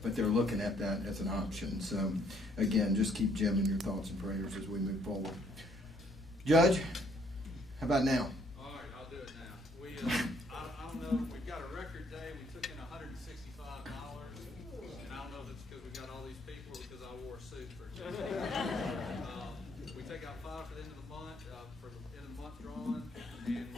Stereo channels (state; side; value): normal; both; correlation 0.66